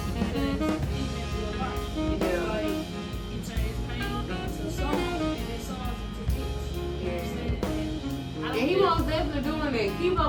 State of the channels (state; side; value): identical; both; correlation 1.00